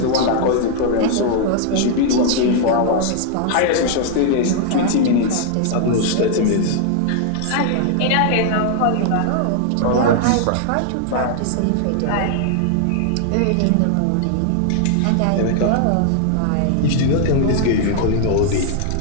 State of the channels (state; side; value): different; both; correlation 0.00